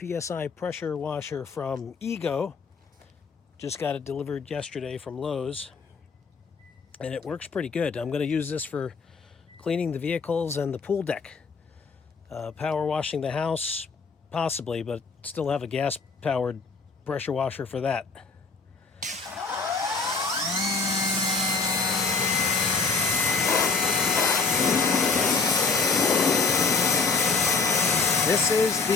pressure washer from Ego. Just got it delivered yesterday from Lowe's. And it works pretty good. I'm going to use this for cleaning the vehicles and the pool deck. Power washing the house, possibly, but still have a gas-powered pressure washer for that. This is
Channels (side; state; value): right; quieter; 4.6 dB